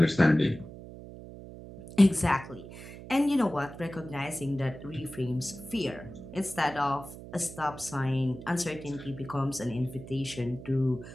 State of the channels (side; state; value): right; noise; hum, 14 dB below the sound